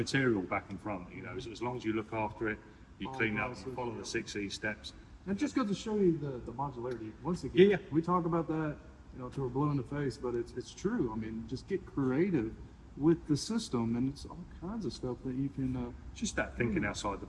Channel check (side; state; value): both; identical; correlation 1.00